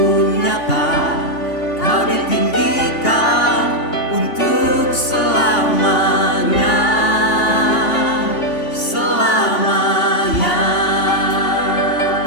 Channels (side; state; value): right; late; 3.5 ms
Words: nyata, Kau ditinggikan untuk selamanya. Selamanya.